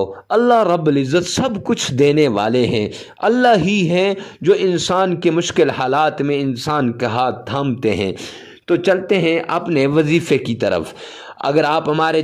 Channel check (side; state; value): both; identical; correlation 1.00